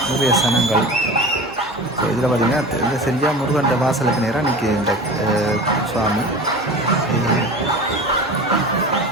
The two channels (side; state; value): both; normal; correlation 0.34